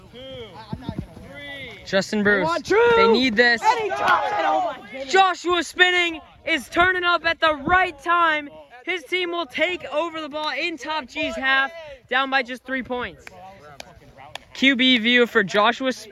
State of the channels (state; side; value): identical; both; correlation 1.00